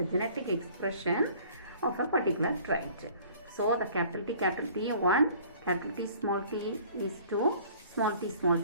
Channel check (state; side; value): inverted; both; correlation -0.52